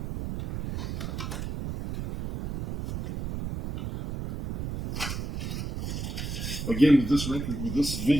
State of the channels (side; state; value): right; noise; rumble, 5 dB below the sound